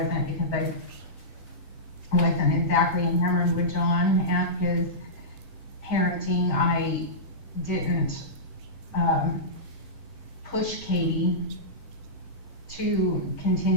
because I wasn't exactly enamored with John at his parenting. I didn't push Katie to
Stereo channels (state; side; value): normal; both; correlation -0.15